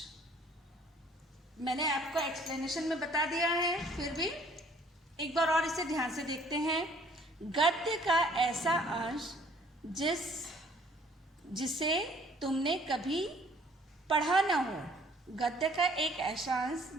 मैंने आपको एक्सप्लेनेशन में बता दिया है, फिर भी एक बार और इसे ध्यान से देखते हैं। गद्य का ऐसा अंश जिसे तुमने कभी पढ़ा न हो। गद्य का एक ऐसा अंश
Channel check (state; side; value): normal; both; correlation 0.58